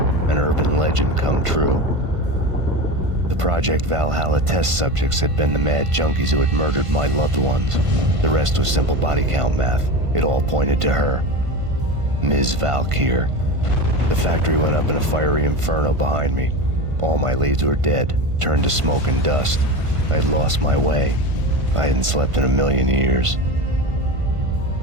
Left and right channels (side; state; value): left; late; 1.5 ms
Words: An urban legend come true. The Project Valhalla test subjects had been the mad junkies who had murdered my loved ones. The rest was simple body count math. It all pointed to her. Ms. Valkyr. The factory went up in a fiery inferno behind me. All my leads were dead, turned to smoke and dust. I had lost my way. I hadn't slept in a million years.